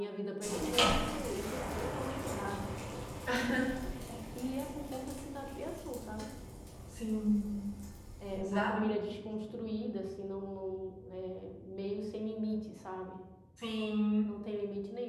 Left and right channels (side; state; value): both; identical; correlation 1.00